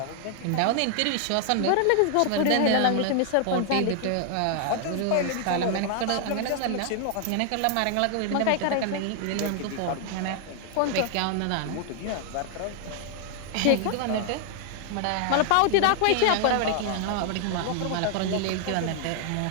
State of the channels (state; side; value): different; both; correlation 0.00